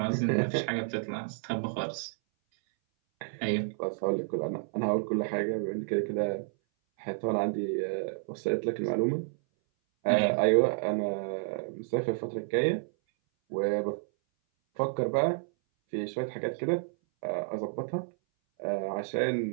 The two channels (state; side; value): silent; left; 58 dB below the other